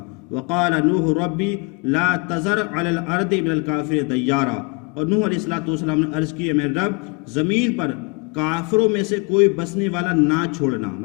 وقال نوح ربی لا تذر علی الارض من الکافرین دیارا، اور نوح علیہ السلام نے عرض کی، میرے رب زمین پر کافروں میں سے کوئی بسنے والا نہ چھوڑنا،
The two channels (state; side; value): quieter; right; 31.3 dB